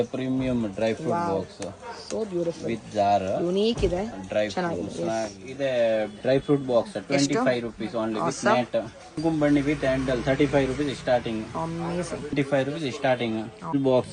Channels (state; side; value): identical; both; correlation 1.00